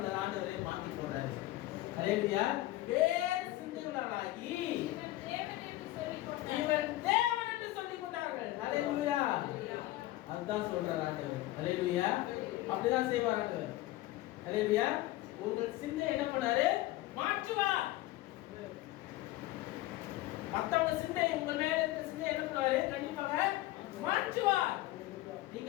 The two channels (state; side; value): quieter; right; 17.0 dB